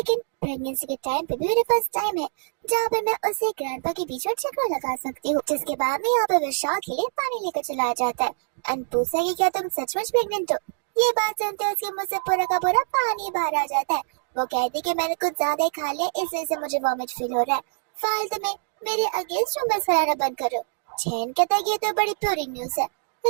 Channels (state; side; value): silent; left; digital silence